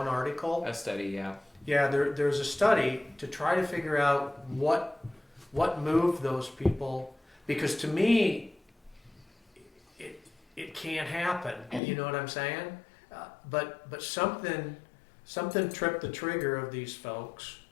article. A study, yeah. Yeah, there's a study to try to figure out what moved those people, because to me, it can't happen. You know what I'm saying? But something tripped the trigger of these folks.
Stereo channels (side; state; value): right; drops out; at 11.8 s